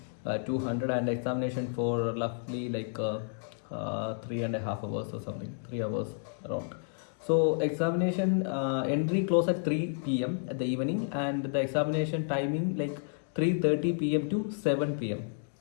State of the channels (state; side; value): silent; right; digital silence